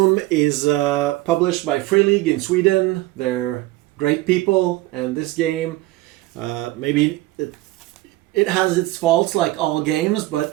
is published by Free League in Sweden. They're great people, and this game, maybe it has its faults like all games,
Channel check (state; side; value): quieter; left; 18.4 dB